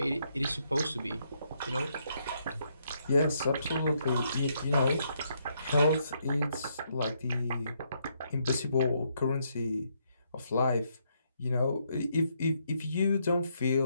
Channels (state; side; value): inverted; both; correlation -0.75